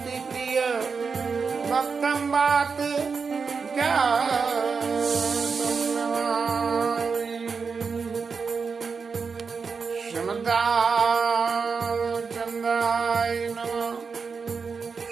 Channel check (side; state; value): left; quieter; 5.3 dB